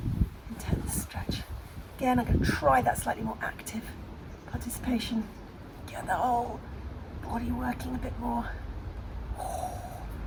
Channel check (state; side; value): identical; both; correlation 1.00